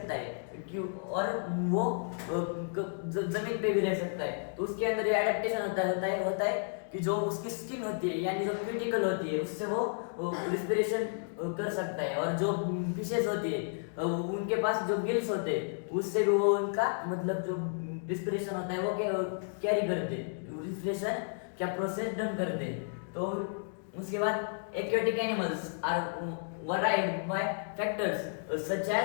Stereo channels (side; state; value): right; silent; digital silence